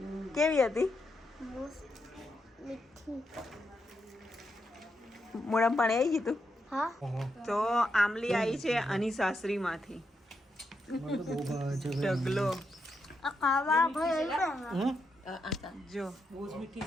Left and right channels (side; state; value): both; normal; correlation 0.83